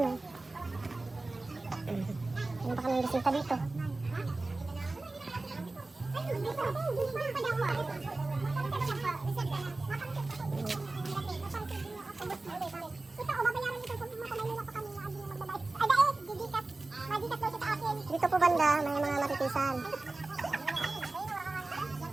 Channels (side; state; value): left; quieter; 3.2 dB